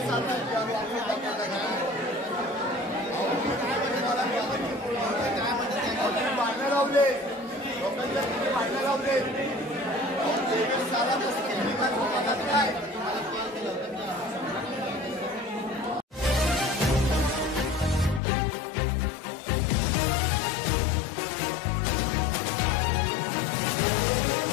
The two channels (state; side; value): drops out; right; at 18.2 s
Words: भांडणं लावले लोकांच्या भांडणं लावले काय